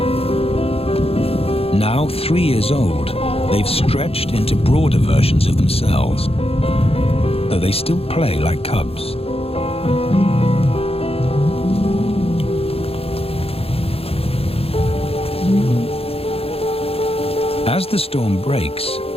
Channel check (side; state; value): right; late; 0.28 ms